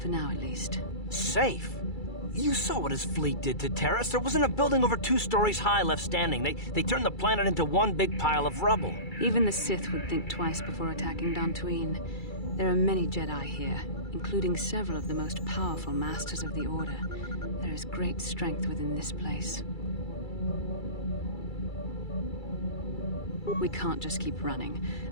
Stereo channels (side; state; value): right; late; 2.3 ms